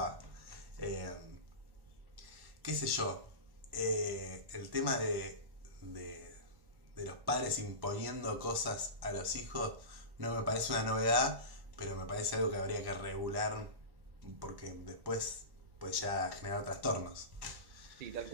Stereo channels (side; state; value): left; late; 1.1 ms